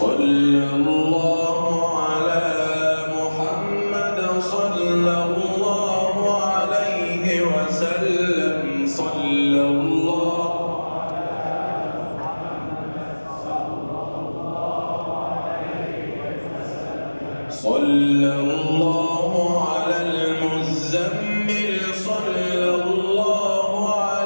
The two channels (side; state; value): both; inverted; correlation -1.00